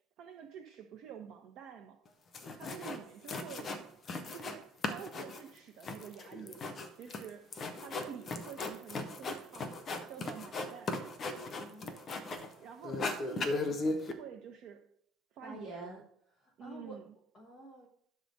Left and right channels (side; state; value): both; normal; correlation 0.64